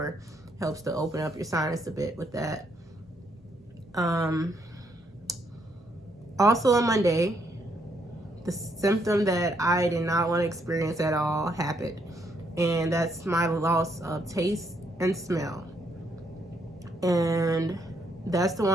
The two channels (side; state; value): both; normal; correlation 0.73